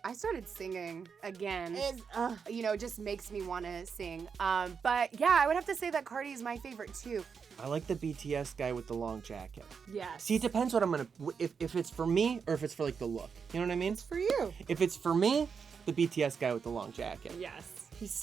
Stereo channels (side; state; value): left; quieter; 6.1 dB